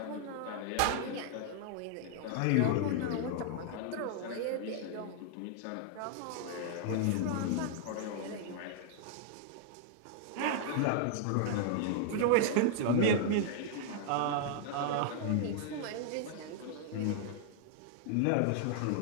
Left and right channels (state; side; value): different; both; correlation -0.01